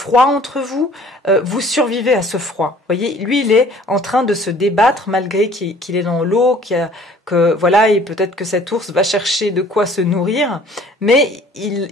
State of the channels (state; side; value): normal; both; correlation 0.53